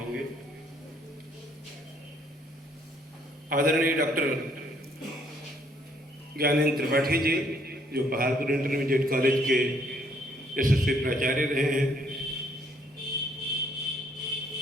आदरणीय डॉक्टर ज्ञानेंद्र त्रिपाठी जी, जो पहाड़पुर इंटरमीडिएट कॉलेज के यशस्वी प्राचार्य रहे हैं,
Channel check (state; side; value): normal; both; correlation 0.66